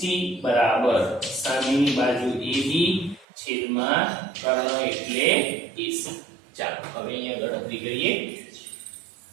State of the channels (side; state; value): left; drops out; at 3.2 s